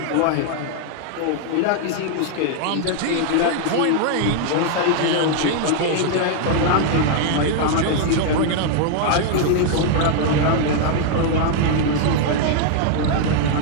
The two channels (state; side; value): different; both; correlation 0.00